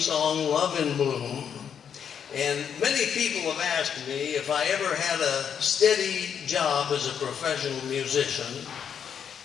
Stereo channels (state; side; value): quieter; right; 7.9 dB